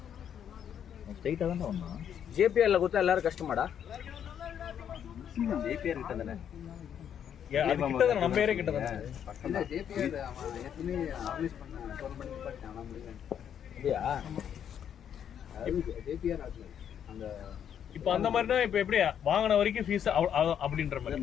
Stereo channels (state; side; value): quieter; right; 8.9 dB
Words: ஸ்ட்ரைட்டா தான் வந்தான். ஜேபிஆர்ல கொடுத்தா எல்லாரும் கஷ்டமாடா. ஜேபிஆர் கிட்ட தானே நம்ம ஏரியா கிட்ட தானே. இல்ல ஜேபிஆர் அவன் ஏற்கனவே ஆர்கனைஸ் பண்ண டோர்னமெண்ட் பார்த்தானா முடியல. அப்படியா? ஜேபிஆர் அந்த இப்போ அந்த மாதிரினா இப்போ எப்படி வாங்கின வரைக்கும் ஃபீஸ் அப்படின்ற மாதிரி